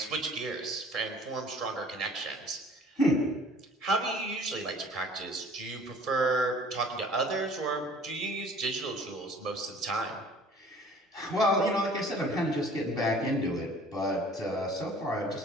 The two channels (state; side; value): normal; both; correlation 0.51